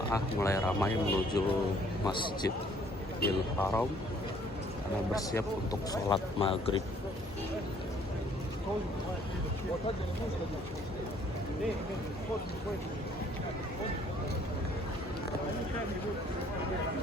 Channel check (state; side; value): normal; both; correlation 0.60